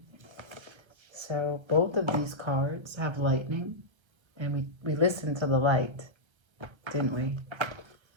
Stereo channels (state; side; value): late; left; 1.3 ms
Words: So both of these cards have lightning, and we listened to the light, didn't we?